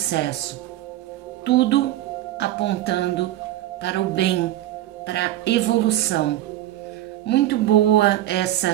tudo apontando para o bem, para a evolução. Muito boa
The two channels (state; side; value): quieter; left; 14.1 dB